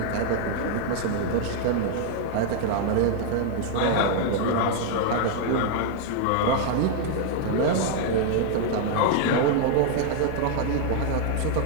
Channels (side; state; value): both; different; correlation 0.00